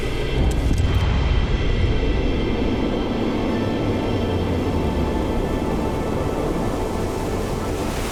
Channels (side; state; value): both; identical; correlation 1.00